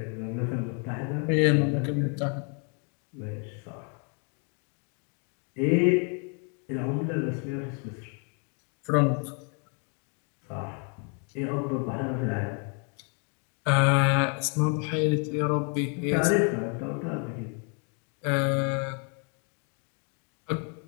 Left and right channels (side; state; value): right; quieter; 39.0 dB